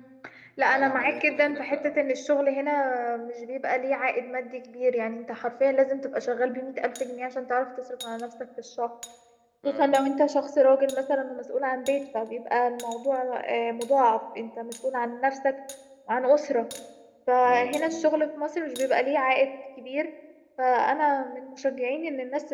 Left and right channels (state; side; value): identical; both; correlation 1.00